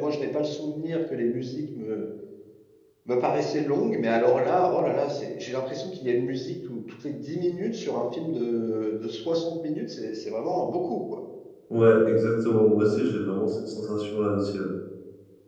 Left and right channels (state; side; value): identical; both; correlation 1.00